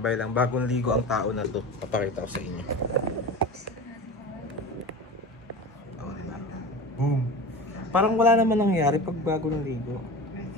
lang, bagong ligo ang tao na to. Papakita ko sa inyo. Oh, diba? Boom! Parang wala naman nangyari pag bago ng ligo.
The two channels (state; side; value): normal; both; correlation 0.32